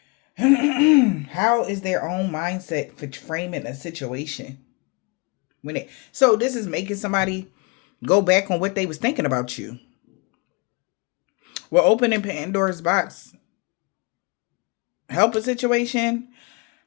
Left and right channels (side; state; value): right; quieter; 29.7 dB